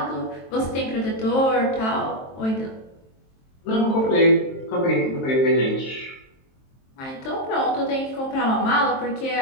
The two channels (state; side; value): late; right; 23 ms